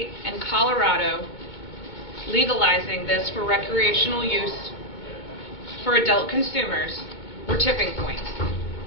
and Colorado legalizing this for recreational use for adult consumers were tipping points.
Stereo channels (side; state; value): right; late; 2.2 ms